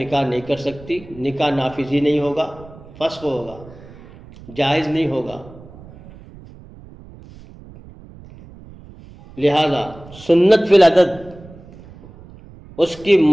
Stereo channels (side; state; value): right; noise; rumble, 20 dB below the sound